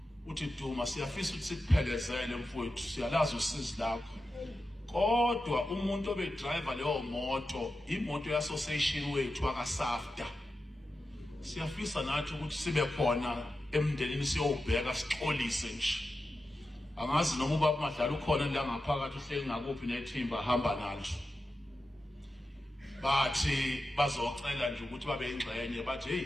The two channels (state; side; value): normal; both; correlation 0.91